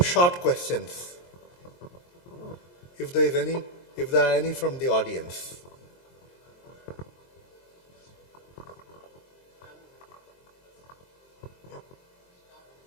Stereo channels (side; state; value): right; late; 23 ms